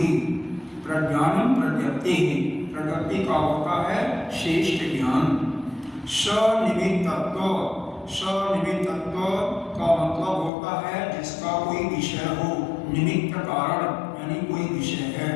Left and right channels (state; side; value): drops out; right; at 10.5 s